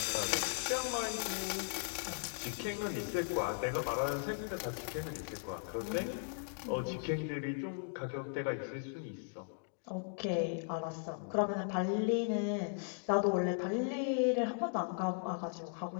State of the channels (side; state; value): right; silent; digital silence